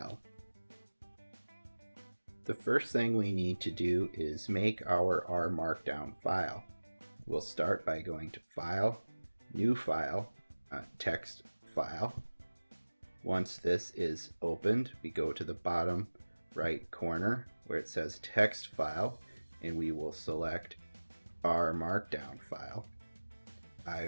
The first thing we need to do is make our R Markdown file. We'll start by going to File, New File, Text File. Once this is opened, we go to the bottom right corner where it says Text File, and we will select R Markdown file.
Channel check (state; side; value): inverted; both; correlation -1.00